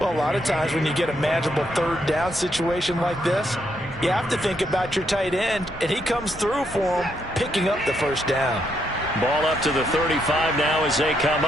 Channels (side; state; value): both; normal; correlation 0.76